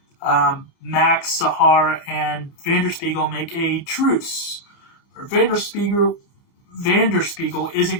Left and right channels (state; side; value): late; right; 30 ms